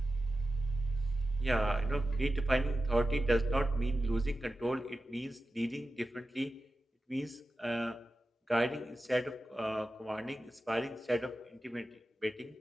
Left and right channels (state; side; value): normal; both; correlation 0.93